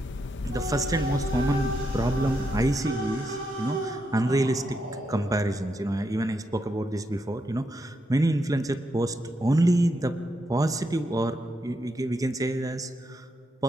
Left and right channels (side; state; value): both; normal; correlation 0.82